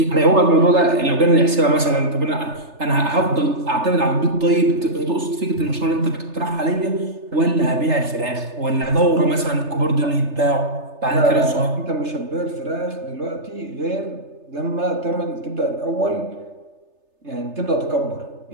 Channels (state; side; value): late; left; 3.3 ms